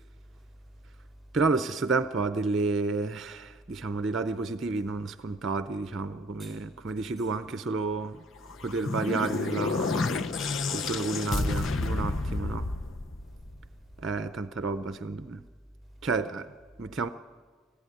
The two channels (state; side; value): normal; both; correlation 0.56